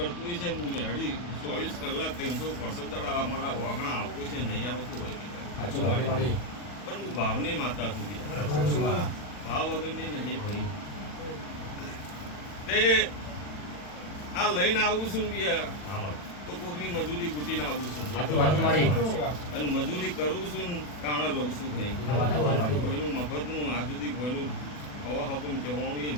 હોય છે હું મેળવી 24 કલાક 365 દાડા અમારા વાગણા આપતું છે નહીં આવતું હોય પણ હું ભાવની માતા સુધી ભાવ વગરની નહીં ભાઈ તે આ લઈને આવું છું તો કોકની મજૂરી કૂટીને આવું છું અને મજૂરી કરું છું કાણા લઉં છું ભાઈ કોઈનું મફતનું આ સુધી કોઈનું હવા હકમ જવાનું એ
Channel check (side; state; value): right; late; 40 ms